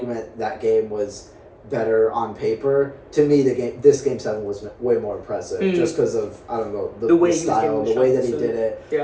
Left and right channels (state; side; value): identical; both; correlation 1.00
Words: that game was better on paper. To me, this game 7 was way more impressive, just because of, I don't know, the way style, the way that he did it.